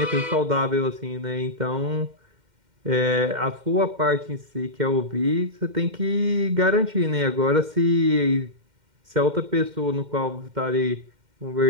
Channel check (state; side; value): late; left; 2.1 ms